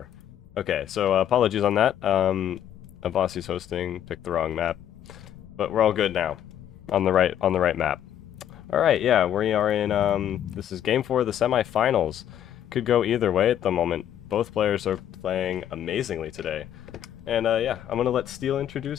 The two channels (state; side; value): quieter; right; 10.5 dB